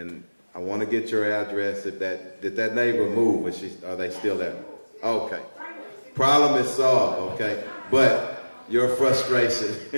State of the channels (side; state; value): both; inverted; correlation -1.00